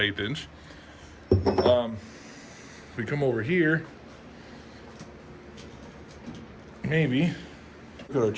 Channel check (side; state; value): both; identical; correlation 1.00